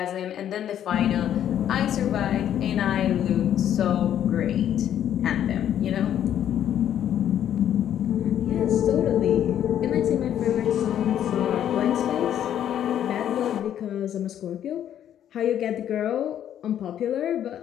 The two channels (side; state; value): right; quieter; 10.4 dB